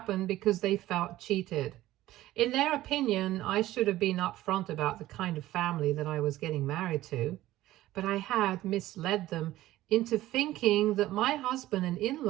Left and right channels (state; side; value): quieter; left; 15.5 dB